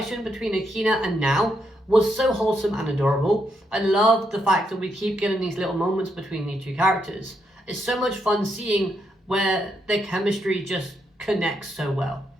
between Akina and Now was so wholesome and adorable. I love the fact that we keep getting these little moments between these two characters. It's so much fun seeing where their chemistry just connects so well.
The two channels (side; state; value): both; normal; correlation 0.79